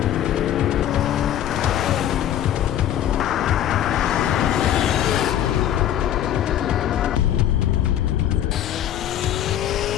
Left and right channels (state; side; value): quieter; right; 11.2 dB